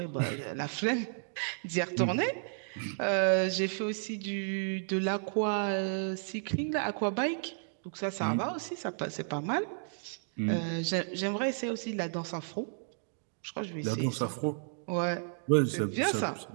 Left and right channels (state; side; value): silent; left; digital silence